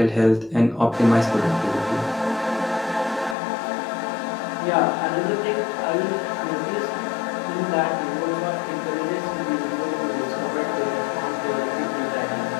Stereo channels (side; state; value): right; drops out; at 3.4 s